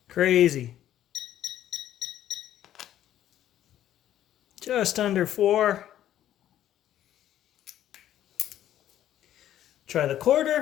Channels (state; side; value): quieter; right; 11.9 dB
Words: Crazy. Just under 4. Try the